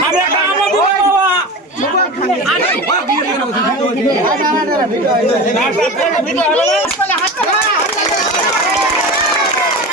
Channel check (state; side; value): normal; both; correlation 0.29